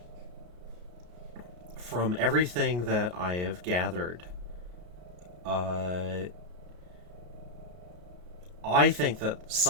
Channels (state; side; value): late; left; 33 ms